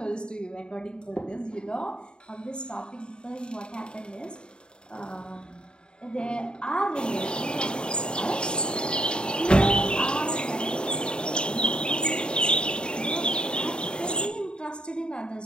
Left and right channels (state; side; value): late; right; 0.050 ms